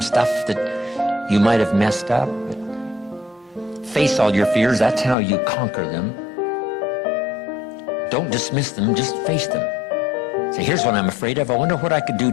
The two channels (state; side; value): drops out; right; at 5.2 s